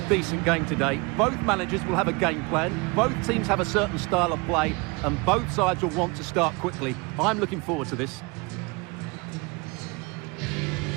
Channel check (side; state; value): left; quieter; 27.5 dB